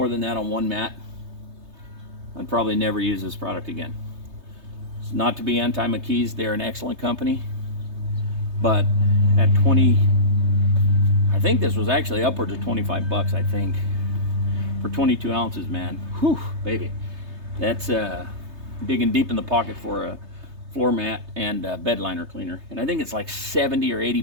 than that on one mat, I'd probably never use this product again. It's not to be anti-McKees, they're an excellent company. But at 20, I think this was actually upwards of 25 bucks, I think. For 22 ounces, man. Whew, baby. That's digging deep in the pocket for a floor mat and a bed liner cleaner. And I think it's like 70 or 80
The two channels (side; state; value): left; late; 3.3 ms